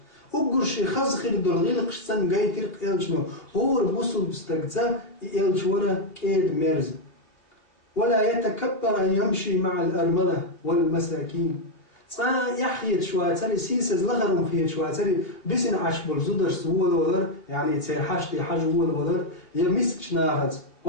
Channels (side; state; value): right; late; 2.8 ms